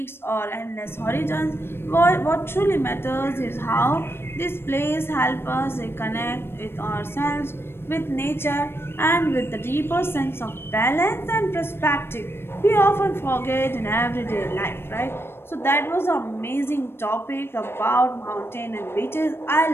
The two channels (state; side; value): late; right; 0.12 ms